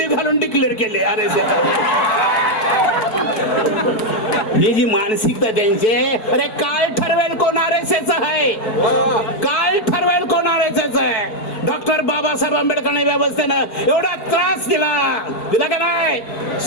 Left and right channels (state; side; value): late; right; 4.6 ms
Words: घालून डिक्लेअर केले. अरे ही जी मानसिकता त्यांचे, अरे काय ठरवेल कोण RSS आहे, काय ठरवेल कोण RSS आहे? डॉक्टर बाबासाहेब आंबेडकरने व्यवस्थेनं एवढा त्रास दिला का नाही?